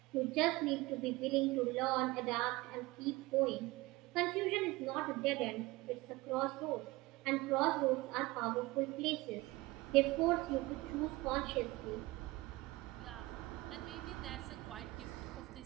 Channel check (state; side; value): quieter; left; 21.1 dB